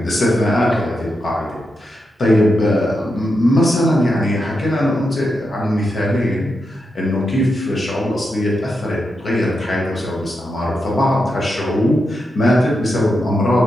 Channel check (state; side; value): normal; both; correlation 0.86